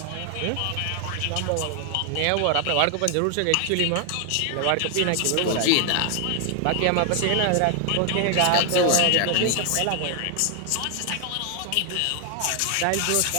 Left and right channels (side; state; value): both; different; correlation 0.00